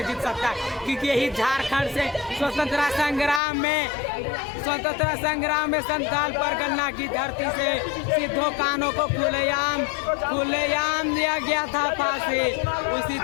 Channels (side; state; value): right; drops out; at 3.4 s